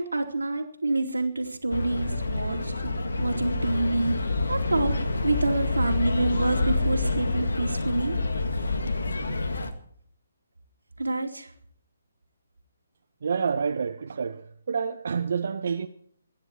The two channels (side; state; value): both; inverted; correlation -0.87